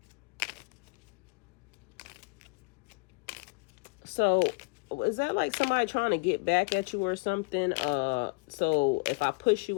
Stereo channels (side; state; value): right; quieter; 30.9 dB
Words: So is that like somebody trying to get back at you or something? So if I push